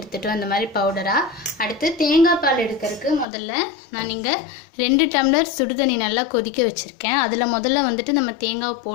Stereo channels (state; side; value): drops out; right; at 3.2 s